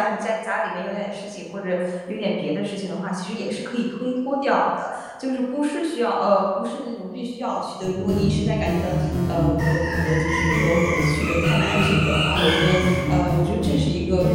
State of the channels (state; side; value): identical; both; correlation 1.00